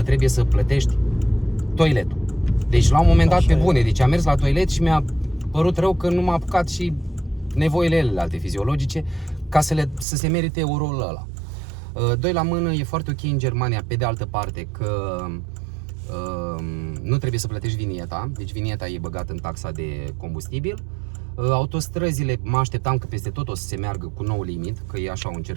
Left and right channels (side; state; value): left; drops out; at 10.1 s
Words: trebuie să plătești toiletul. Deci la un moment dat, pe bune, deci am mers la toilet și mi-a părut rău că nu m-a apucat și nevoile alte fiziologice ca să se merite euroul ăla. Doi la mână, e foarte ok în Germania, pe de altă parte, că nu trebuie să plătești vinieta, deci vinieta e băgată în taxa de combustibil. Autostrăzile, mă așteptam că peste tot o să se meargă cu nou limit, că e așa un